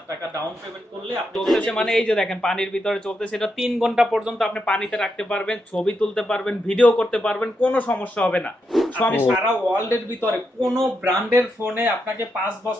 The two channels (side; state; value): both; normal; correlation 0.83